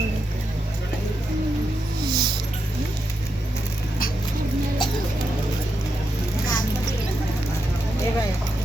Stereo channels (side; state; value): both; normal; correlation 0.85